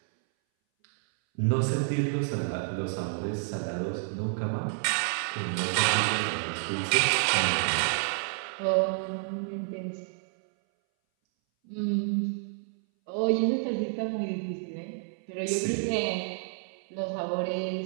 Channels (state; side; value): silent; left; 58 dB below the other